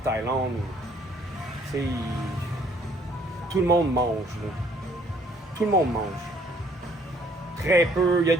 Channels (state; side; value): normal; both; correlation 0.62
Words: Tout le monde mange. Là. Tout le monde mange. Très peu. Il y a